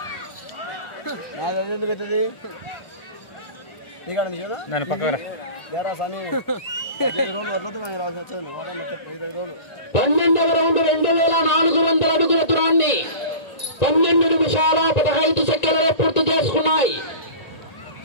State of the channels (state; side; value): late; right; 1.9 ms